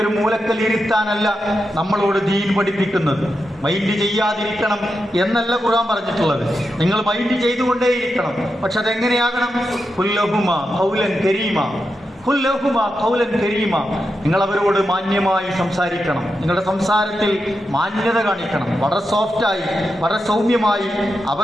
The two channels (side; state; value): both; normal; correlation 0.87